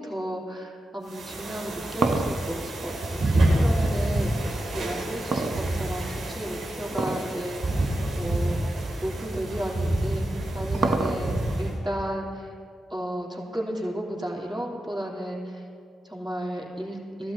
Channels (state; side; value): normal; both; correlation 0.90